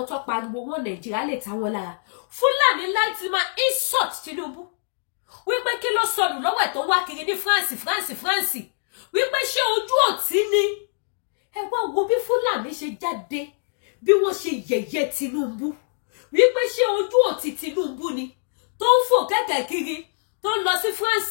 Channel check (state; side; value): silent; right; digital silence